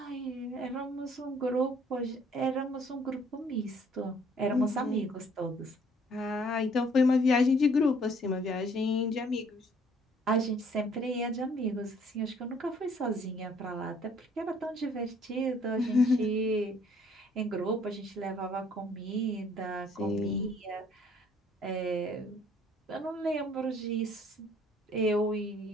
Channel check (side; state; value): both; normal; correlation 0.60